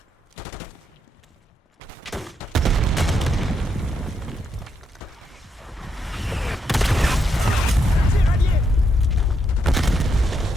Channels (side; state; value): both; normal; correlation 0.79